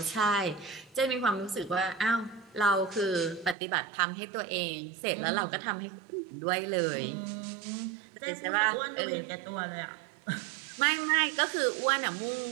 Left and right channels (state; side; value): drops out; left; at 3.6 s